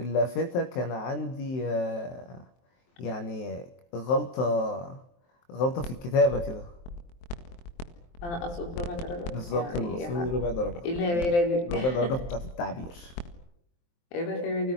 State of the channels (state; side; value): late; right; 23 ms